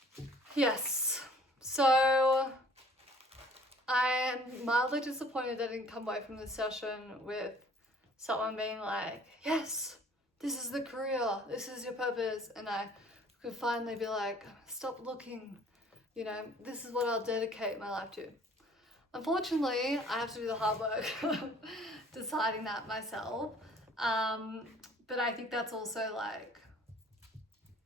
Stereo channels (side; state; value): both; normal; correlation 0.54